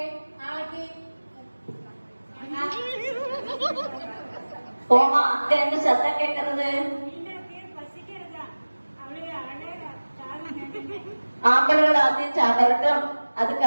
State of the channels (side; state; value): both; inverted; correlation -1.00